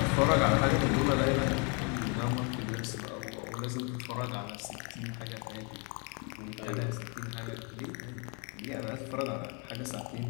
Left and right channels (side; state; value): right; quieter; 35.1 dB